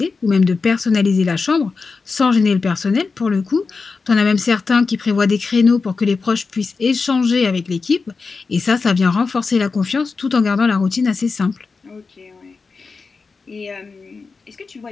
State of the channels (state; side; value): quieter; right; 4.5 dB